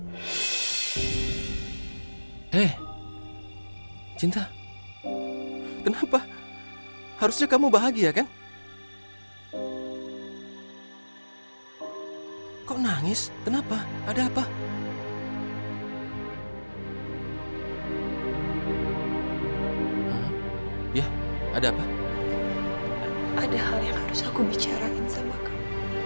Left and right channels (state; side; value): inverted; both; correlation -1.00